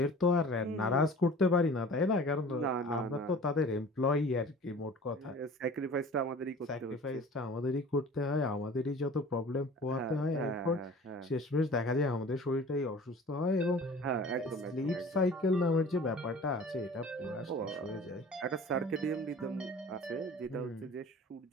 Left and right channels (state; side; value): normal; both; correlation 0.44